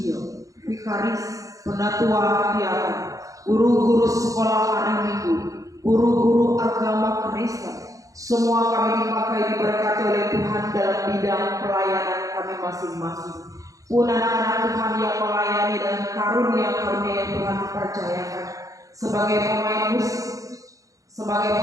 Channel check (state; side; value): late; left; 0.16 ms